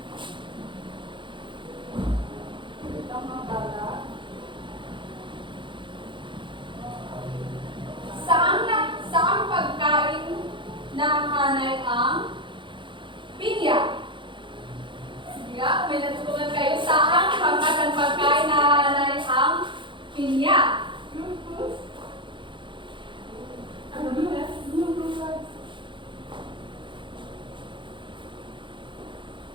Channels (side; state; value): left; late; 0.24 ms